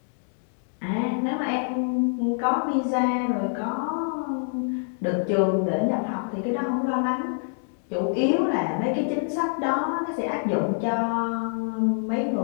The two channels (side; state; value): right; silent; digital silence